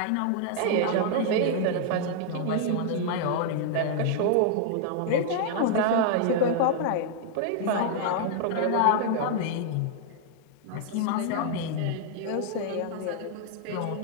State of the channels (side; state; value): both; different; correlation 0.00